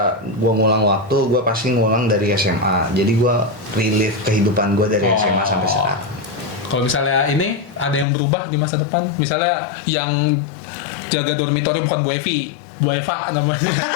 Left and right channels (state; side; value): drops out; right; at 8.1 s